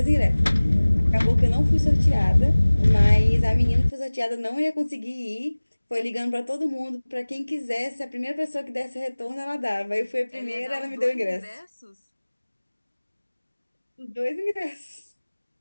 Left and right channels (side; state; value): both; inverted; correlation -1.00